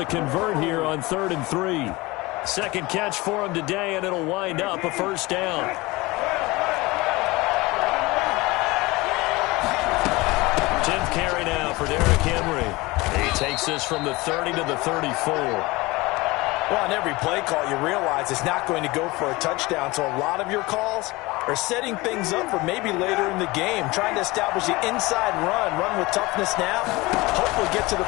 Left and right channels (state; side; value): quieter; right; 22.1 dB